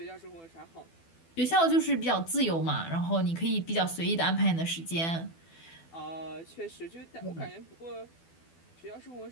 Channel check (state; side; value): late; right; 12 ms